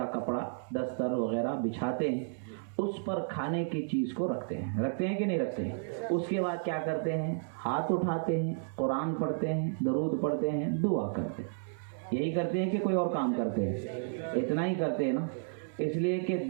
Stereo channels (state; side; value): silent; left; digital silence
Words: کپڑا دستر وغیرہ بچھاتے ہیں، اس پر کھانے کی چیز کو رکھتے ہیں کہ نہیں رکھتے ہیں؟ اس کے بعد کیا کرتے ہیں؟ ہاتھ اٹھاتے ہیں، قرآن پڑھتے ہیں، درود پڑھتے ہیں، دعا کرتے ہیں۔ یہی کرتے ہیں کہ کوئی اور کام کرتے ہیں؟ اتنا ہی کرتے ہیں نا، اس لیے کہ